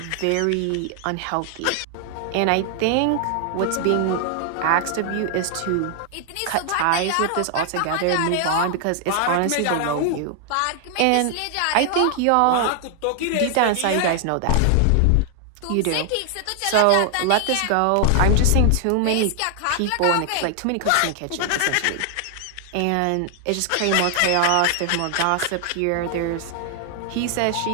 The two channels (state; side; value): different; both; correlation 0.00